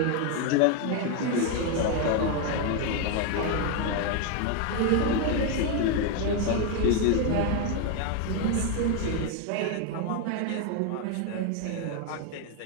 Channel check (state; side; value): different; both; correlation 0.01